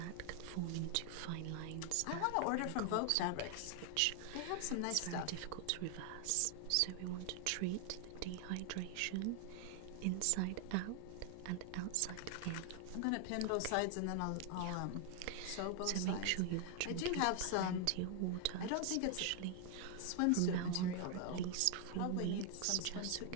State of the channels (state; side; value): different; both; correlation 0.00